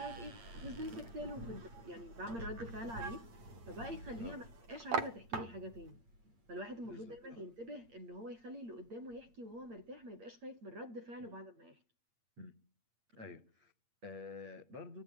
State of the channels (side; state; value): left; late; 8.7 ms